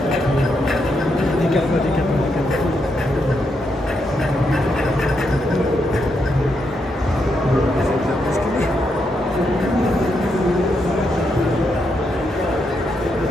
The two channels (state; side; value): normal; both; correlation 0.81